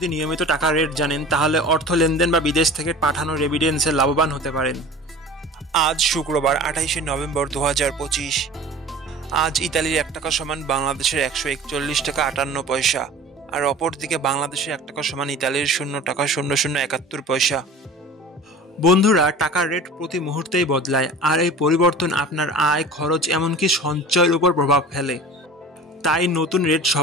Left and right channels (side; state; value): both; normal; correlation 0.40